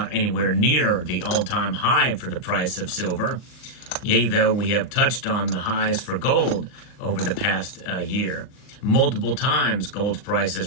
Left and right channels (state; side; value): late; right; 39 ms